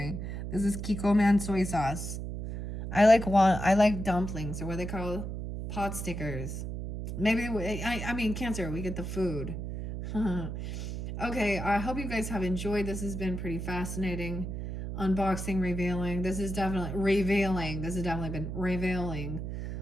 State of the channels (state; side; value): noise; right; hum, 5 dB below the sound